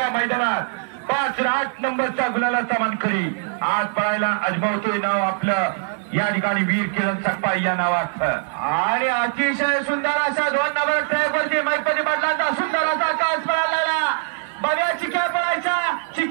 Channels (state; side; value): silent; left; 62 dB below the other